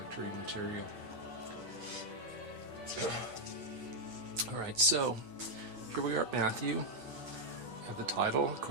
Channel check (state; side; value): late; left; 8.5 ms